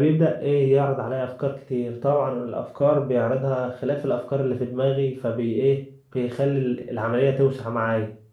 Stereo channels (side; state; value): both; identical; correlation 1.00